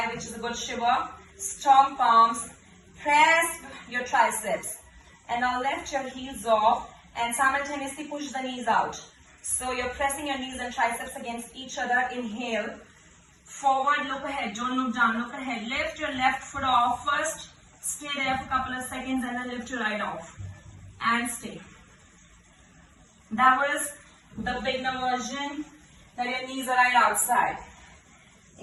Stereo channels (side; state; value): both; identical; correlation 1.00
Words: which is a good shiver. Strong palms. Press your triceps. And now lift your heels off and simultaneously push the knees out. So you're pressing your knees and triceps against each other. Inhale. Forward, look ahead. Don't look down, look ahead. Lift your left foot off first. Stay there for a couple of seconds and then lift your right off. And stay. That was the beginner version, that your knees are right outside.